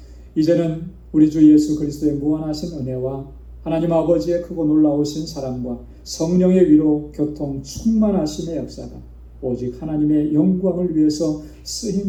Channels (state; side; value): identical; both; correlation 1.00